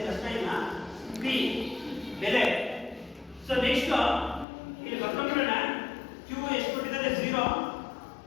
ಕಷ್ಟ ಇಲ್ಲ. ಪಿ ಬೆಲೆ. ಸೊ ನೆಕ್ಸ್ಟ್ ಇಲ್ಲಿ ಬರ್ಕೊಂಡ್ಬಿಡೋಣ. ಕ್ಯೂ ಎಷ್ಟು ಕೊಟ್ಟಿದ್ದಾರೆ? 0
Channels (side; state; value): right; drops out; at 4.5 s